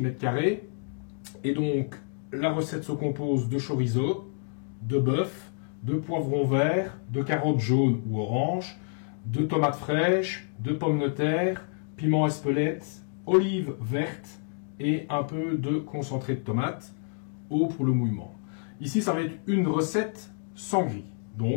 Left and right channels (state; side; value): silent; right; digital silence